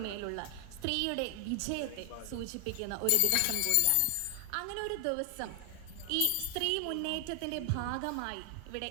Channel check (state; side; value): different; both; correlation 0.00